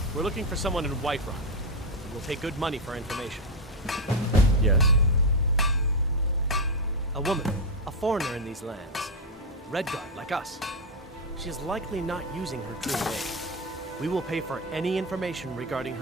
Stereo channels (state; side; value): normal; both; correlation 0.06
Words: We're looking for someone in Whiterun. We'll pay good money for information. Yes? A woman. A foreigner in these lands. Redguard, like us. She is likely not using her true name. We will pay for any information regarding